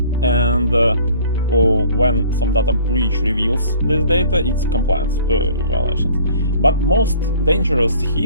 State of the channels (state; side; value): inverted; both; correlation -0.52